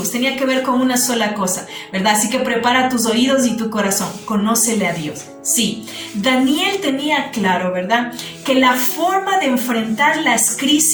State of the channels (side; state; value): both; identical; correlation 1.00